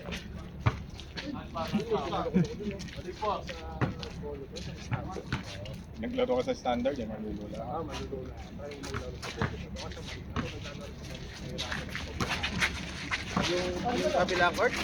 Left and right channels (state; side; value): identical; both; correlation 1.00